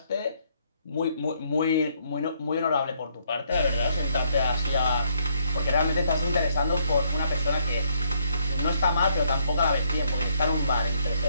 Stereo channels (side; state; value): both; inverted; correlation -0.72